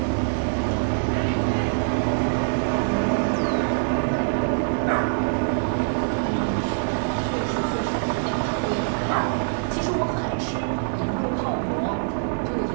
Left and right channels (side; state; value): left; silent; 55 dB below the other